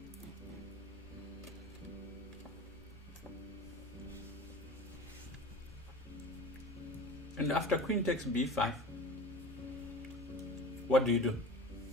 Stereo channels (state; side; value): normal; both; correlation 0.36